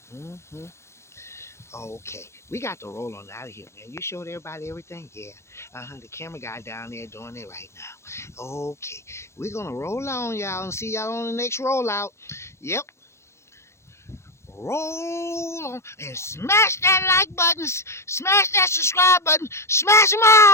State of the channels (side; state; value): right; late; 0.13 ms